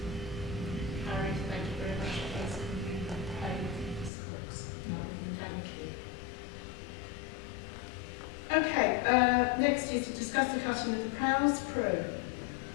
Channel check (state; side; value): drops out; right; at 4.1 s